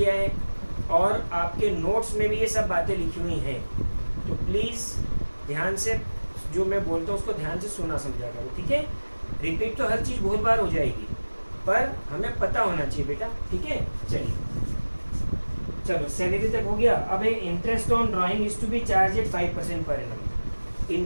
है और आपके नोट्स में भी ये सब बातें लिखी हुई हैं। तो प्लीज ध्यान से जो मैं बोलता हूँ उसको ध्यान से सुना समझा करो, ठीक है। रिपीट तो हर चीज़ बहुत बार हो जाएगी, पर हमें पता होना चाहिए बेटा, ठीक है। चलिए चलो सैलरी तक हो गया। अब interest on drawing is to be charge at 5% per annum.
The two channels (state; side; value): inverted; both; correlation -1.00